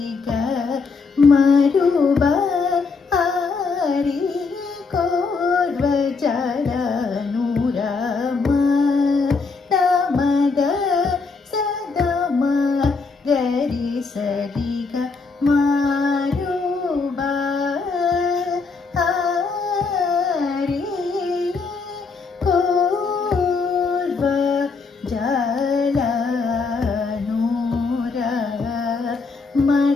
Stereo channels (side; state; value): right; quieter; 4.5 dB